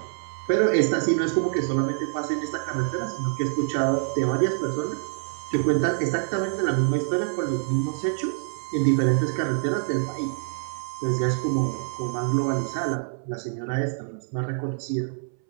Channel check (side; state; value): left; silent; 61 dB below the other